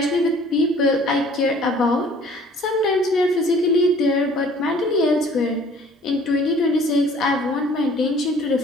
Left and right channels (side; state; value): both; normal; correlation 0.53